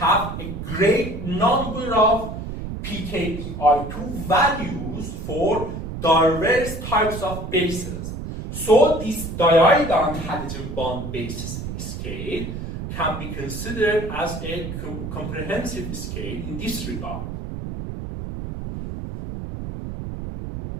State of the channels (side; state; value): right; noise; rumble, 7 dB below the sound